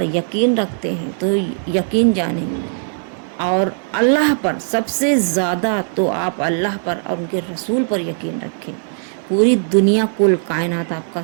यकीन रखते हैं तो यकीन जानें, और अल्लाह पर सबसे ज़्यादा तो आप अल्लाह पर और उनके रसूल पर यकीन रखें। पूरी दुनिया कुल कायनात आपका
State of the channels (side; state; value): left; silent; digital silence